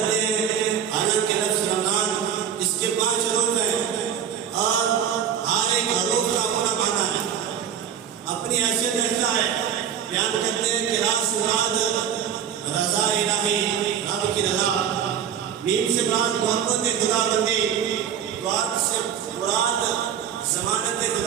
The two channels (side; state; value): left; quieter; 8.5 dB